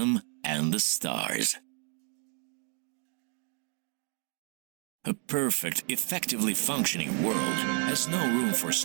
and the stars. A perfect, effectively functioning world has no room for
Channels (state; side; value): quieter; left; 39.9 dB